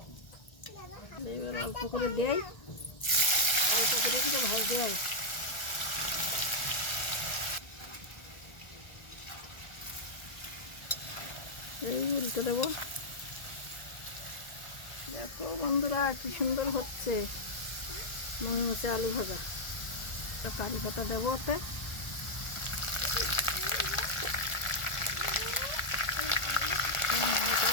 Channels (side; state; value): right; late; 1.4 ms